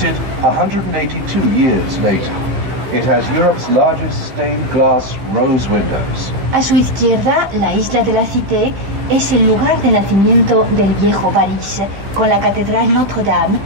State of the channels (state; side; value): late; left; 15 ms